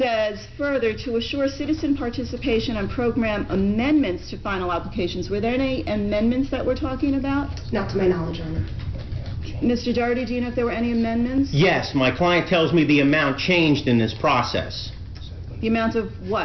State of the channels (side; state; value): both; identical; correlation 1.00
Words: further to assure citizen participation on program amendments to final applications. Were there any amendments that we're talking about? Not to my knowledge, Your Honor. Mr. Doherty, do you know if there were any amendments? Yes, my client tells me the amount changed in this process. The amount of